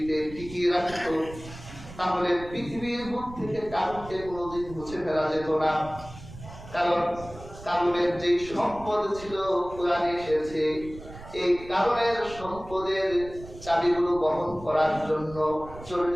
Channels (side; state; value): right; noise; rumble, 15 dB below the sound